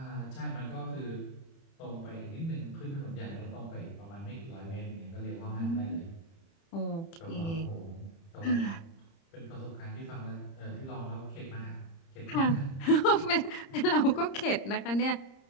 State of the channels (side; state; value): right; late; 30 ms